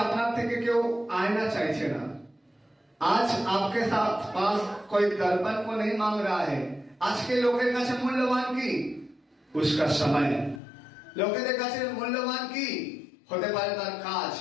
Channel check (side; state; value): right; drops out; at 10.6 s